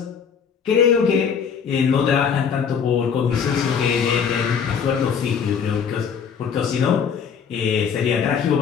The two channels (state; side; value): quieter; right; 6.9 dB